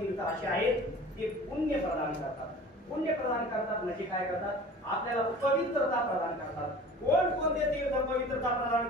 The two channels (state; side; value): normal; both; correlation 0.42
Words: असे आहेत ते पुण्य प्रदान करतात. पुण्य प्रदान करतात म्हणजे काय करतात. आपल्याला पवित्रता प्रदान करतात. कोण कोणते तीर्थ पवित्रता प्रदान